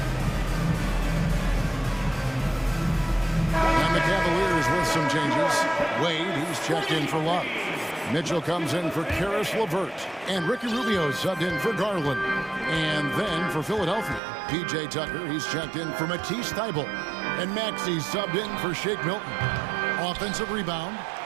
And the Cavaliers with some changes. Wade, he's checked in for Love. Mitchell comes in for Karis LeVert. And Ricky Rubio subbed in for Garland. And then for Philadelphia, P.J. Tucker, he's checked in for Matisse Thybulle. And Maxey subbed in for Shake Milton. Offensive rebound.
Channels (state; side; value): drops out; left; at 14.2 s